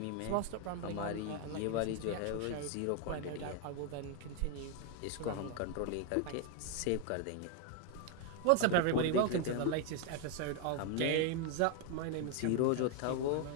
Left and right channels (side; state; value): both; different; correlation 0.01